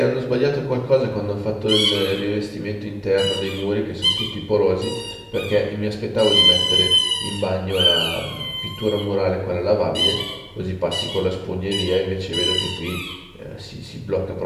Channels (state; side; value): identical; both; correlation 1.00